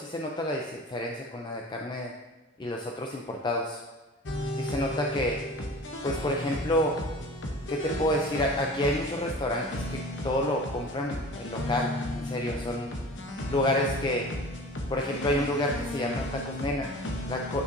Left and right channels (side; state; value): both; normal; correlation 0.40